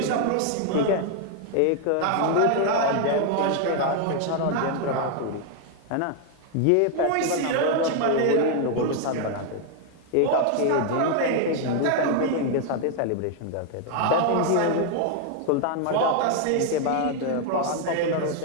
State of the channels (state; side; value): different; both; correlation 0.00